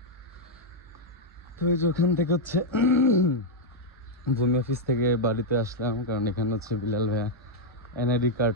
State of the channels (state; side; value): normal; both; correlation -0.03